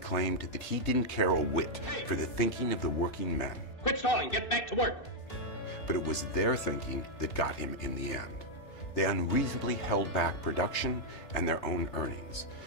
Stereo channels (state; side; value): late; right; 3.3 ms